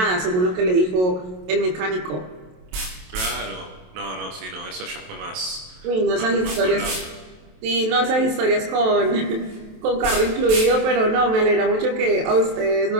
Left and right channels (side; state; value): left; late; 27 ms